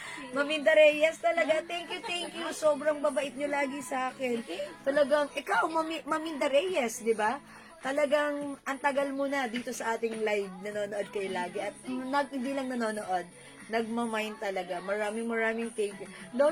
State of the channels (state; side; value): identical; both; correlation 1.00